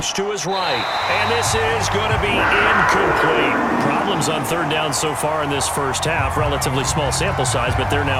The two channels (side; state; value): both; identical; correlation 1.00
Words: to his right. And this is going to be incomplete. Problems on 3rd down so far in this first half. Relatively small sample size, but they're